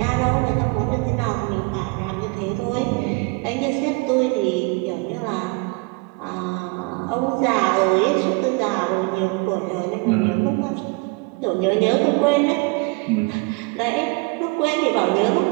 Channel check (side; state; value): left; quieter; 29.3 dB